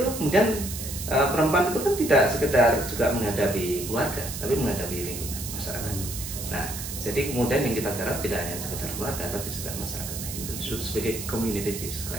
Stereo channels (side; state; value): right; noise; hiss, 7 dB below the sound